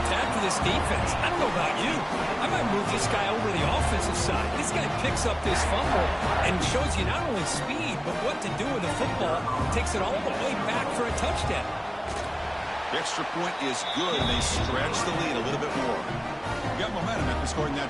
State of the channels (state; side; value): identical; both; correlation 1.00